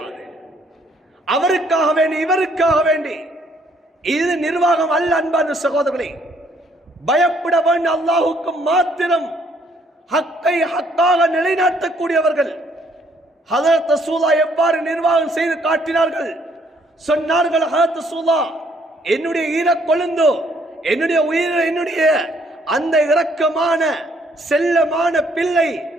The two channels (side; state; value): both; normal; correlation 0.66